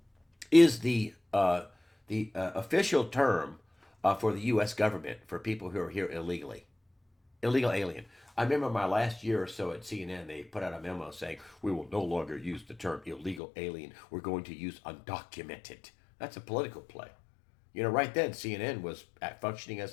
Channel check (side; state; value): right; drops out; at 13.4 s